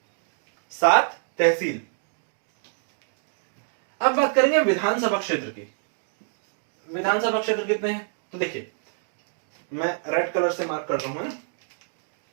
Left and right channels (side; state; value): left; silent; digital silence